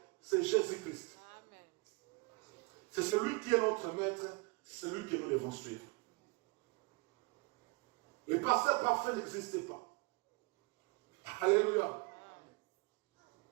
c'est Jésus-Christ. C'est celui qui est notre maître, c'est celui que nous devons suivre. Le pasteur parfait n'existe pas. Alléluia.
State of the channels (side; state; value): left; quieter; 29.2 dB